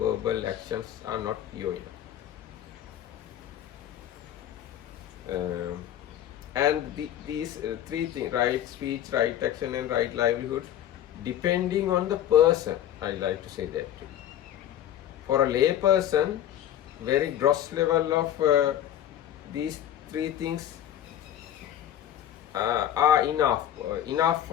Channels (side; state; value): right; quieter; 11.3 dB